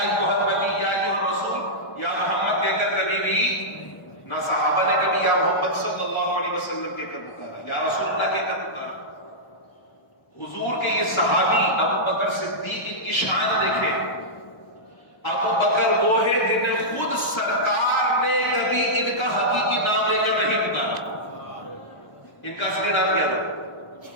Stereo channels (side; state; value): right; late; 1.1 ms